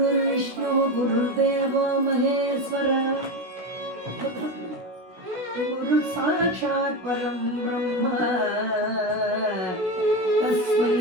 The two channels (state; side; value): late; left; 16 ms